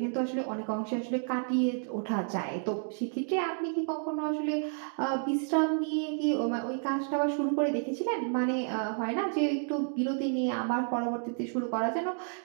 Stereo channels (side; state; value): left; silent; 57 dB below the other